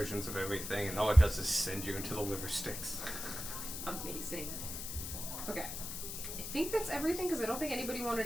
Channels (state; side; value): noise; left; hiss, 6 dB below the sound